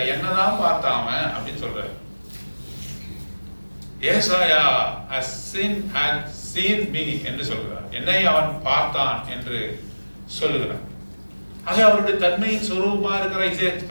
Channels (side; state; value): both; inverted; correlation -1.00